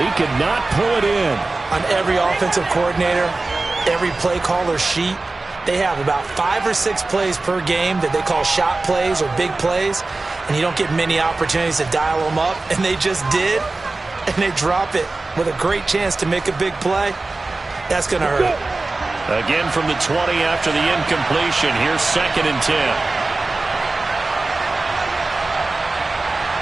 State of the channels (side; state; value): left; quieter; 3.3 dB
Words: he could not pull it in. On every offensive coordinator, every play caller sheet, they have about 5 or 6 plays per game that they call shot plays or big plays, and you don't get many opportunities to dial them up, and they just did, and they drop it with a great chance to make a big play. That's going to hurt. Again from the 20 after the incompletion. Here's 2nd and 10.